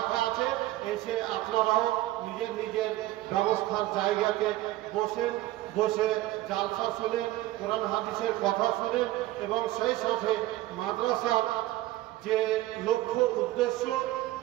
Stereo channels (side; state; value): left; quieter; 16.2 dB